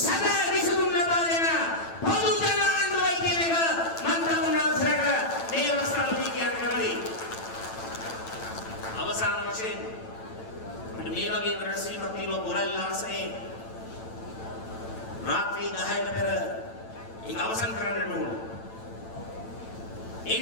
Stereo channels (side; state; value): right; late; 9.0 ms